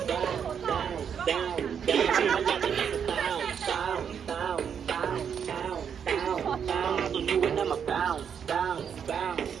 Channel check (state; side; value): quieter; left; 7.7 dB